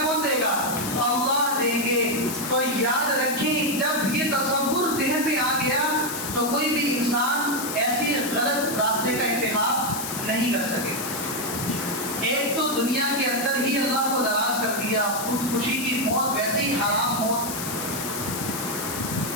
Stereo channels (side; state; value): left; noise; hiss, 6 dB below the sound